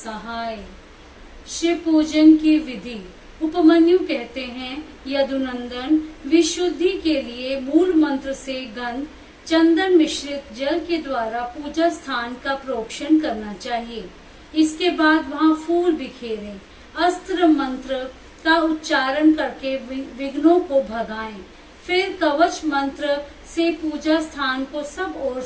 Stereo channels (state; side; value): identical; both; correlation 1.00